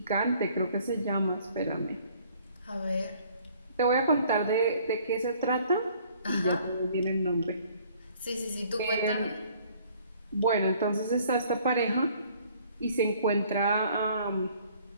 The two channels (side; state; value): both; inverted; correlation -0.58